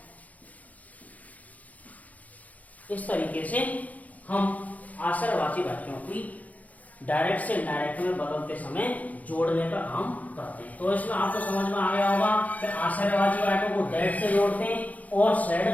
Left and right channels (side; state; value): right; late; 0.075 ms